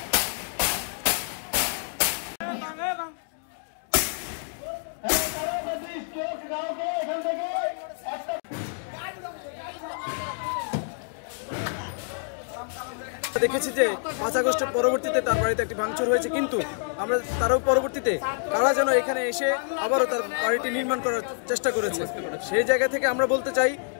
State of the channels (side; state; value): right; silent; digital silence